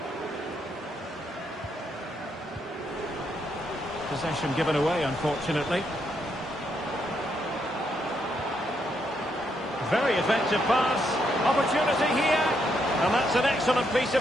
Possession given away, unfortunately. Very effective pass. Opportunity here. And that's an excellent piece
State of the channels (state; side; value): normal; both; correlation 0.77